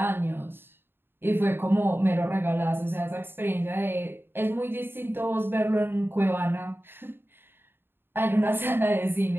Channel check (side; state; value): left; late; 0.10 ms